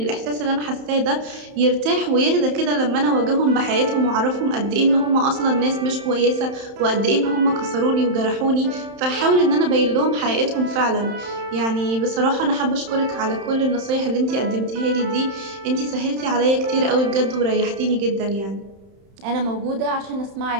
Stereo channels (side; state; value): left; late; 31 ms